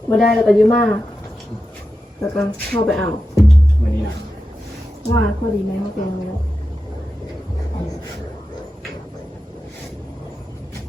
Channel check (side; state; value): both; normal; correlation 0.90